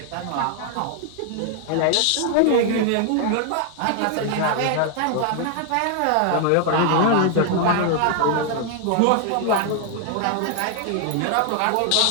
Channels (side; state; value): both; different; correlation 0.00